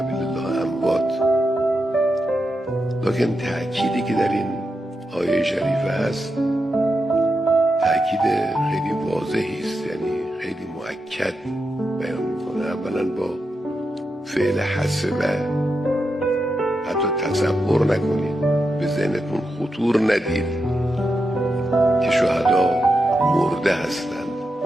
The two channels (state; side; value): normal; both; correlation 0.87